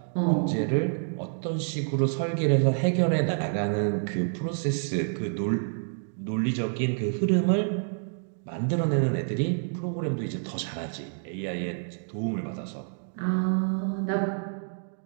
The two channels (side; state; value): left; silent; digital silence